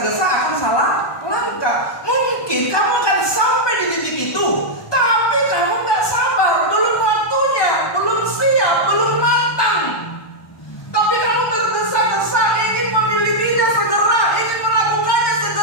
akan salah langkah. Mungkin kamu akan sampai di titik itu, tapi kamu nggak sabar, belum waktunya, belum siap, belum matang. Tapi kamu tergesa-gesa ingin memilikinya segera, ingin melakukannya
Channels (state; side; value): late; right; 1.2 ms